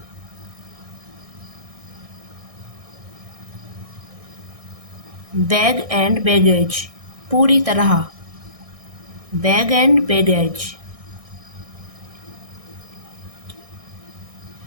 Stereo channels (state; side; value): late; left; 1.6 ms